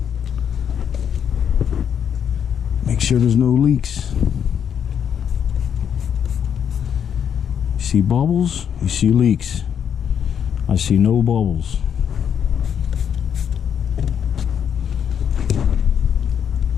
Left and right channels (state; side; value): quieter; right; 8.3 dB